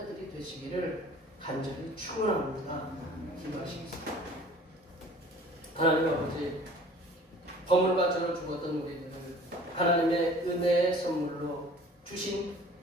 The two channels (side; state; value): both; normal; correlation 0.48